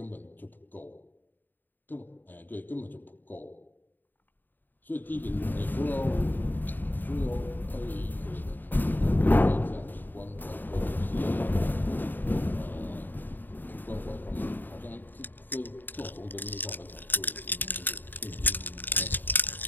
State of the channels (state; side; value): late; right; 0.090 ms